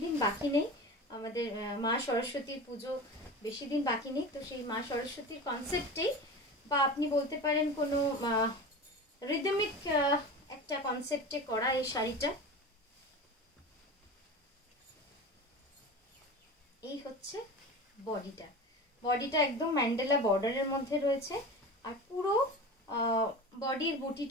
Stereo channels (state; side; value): normal; both; correlation 0.31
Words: দিন বাকি নেই, আমাদের মা সরস্বতীর পুজো বেশি দিন বাকি নেই। তো সেই মা সরস্বতীর কনসেপ্টেই, বা আপনি বলতে পারেন কোনো রিদমিক একটা কনসেপ্টে করা এই শাড়িটা। এই হচ্ছে বডিটা একদম ম্যান্ডেলা বর্ডারের মধ্যে রয়েছে, আর পুরো বডির